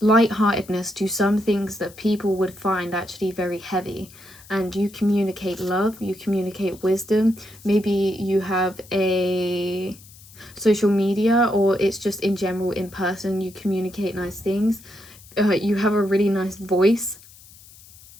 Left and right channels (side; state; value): left; noise; hiss, 22 dB below the sound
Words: lightheartedness to some things that people would find actually very heavy, and you communicate love, you communicate wisdom. Maybe you have a social media, or it's just in general in person, you communicate nice things. You have a really nice voice.